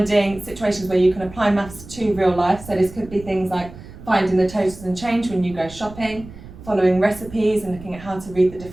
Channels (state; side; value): noise; right; rumble, 17 dB below the sound